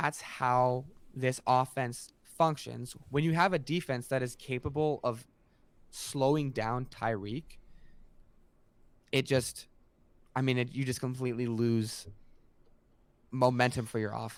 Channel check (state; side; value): identical; both; correlation 1.00